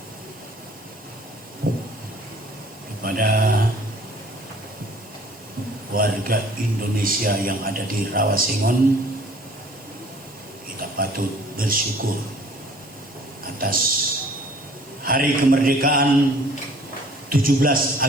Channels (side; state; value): both; normal; correlation 0.53